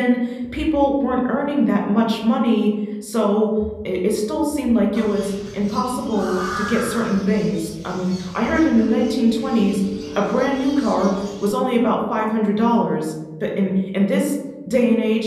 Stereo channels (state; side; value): identical; both; correlation 1.00